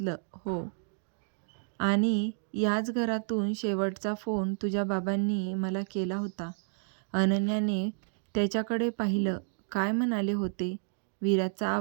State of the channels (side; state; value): left; silent; 57 dB below the other